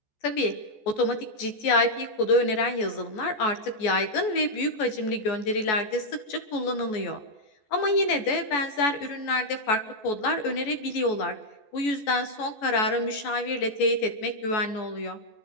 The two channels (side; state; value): right; late; 14 ms